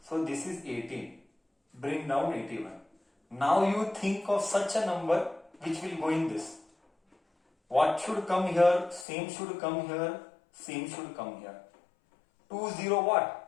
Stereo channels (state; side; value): drops out; right; at 9.1 s